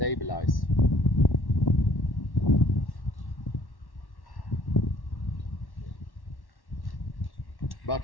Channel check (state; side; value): late; right; 1.1 ms